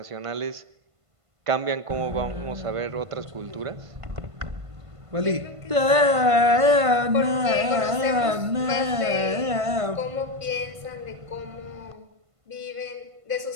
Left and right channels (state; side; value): late; left; 1.5 ms